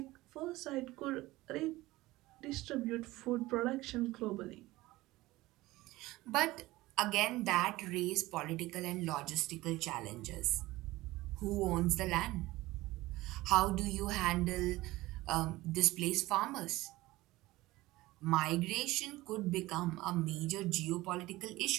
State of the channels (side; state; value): left; quieter; 18.7 dB